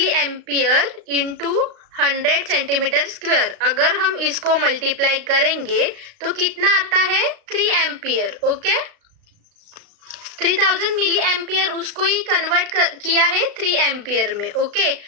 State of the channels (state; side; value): late; left; 35 ms